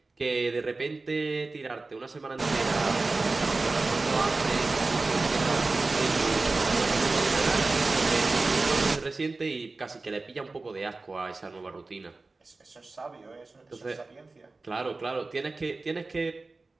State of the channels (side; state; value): left; quieter; 3.5 dB